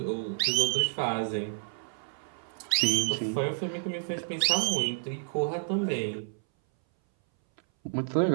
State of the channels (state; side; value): silent; left; 58 dB below the other